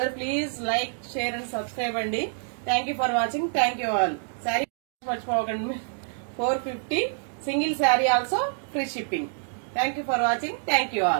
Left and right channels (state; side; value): silent; left; digital silence